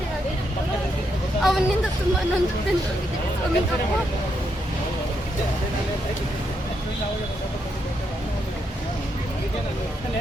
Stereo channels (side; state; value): both; normal; correlation 0.80